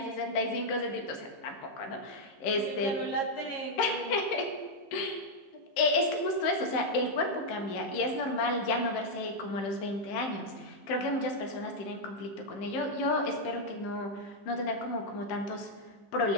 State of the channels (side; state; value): right; late; 15 ms